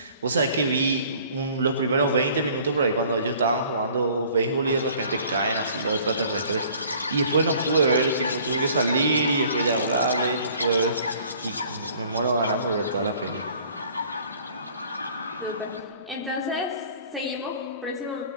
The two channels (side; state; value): both; inverted; correlation -0.53